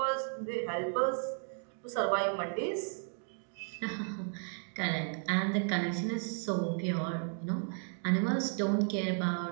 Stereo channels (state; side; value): silent; left; 55 dB below the other